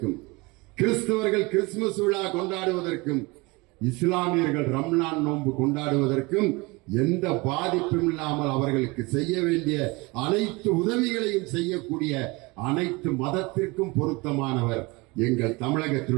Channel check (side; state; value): left; quieter; 25.0 dB